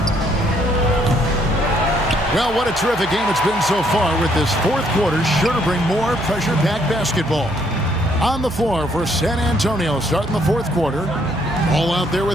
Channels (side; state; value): right; noise; hum, 14 dB below the sound